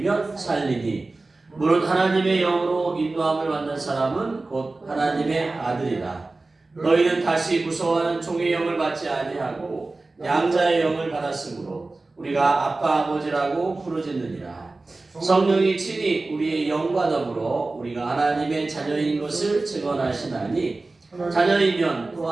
살리니 무릇 하나님의 영으로 인도함을 받는 사람은 곧 하나님의 아들이라. 너희는 다시 무서워하는 종의 영을 받지 아니하고 양자의 영을 받았으므로 우리가 아빠 아버지라고 부르짖느니라. 성령이 친히 우리의 영과 더불어 우리가 하나님의 자녀인 것을 증언하시나니 자녀이면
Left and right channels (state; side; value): quieter; left; 3.3 dB